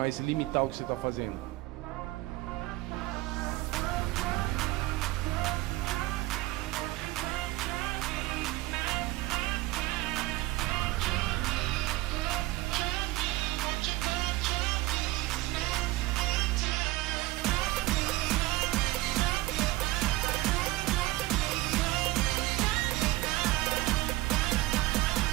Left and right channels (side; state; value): left; quieter; 18.6 dB